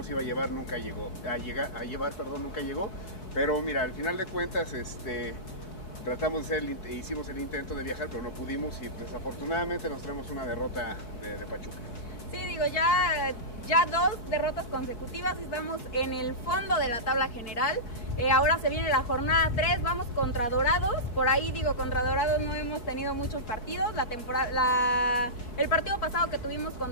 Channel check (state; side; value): late; right; 4.3 ms